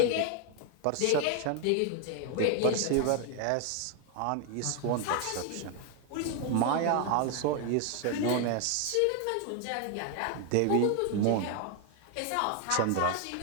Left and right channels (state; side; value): different; both; correlation 0.01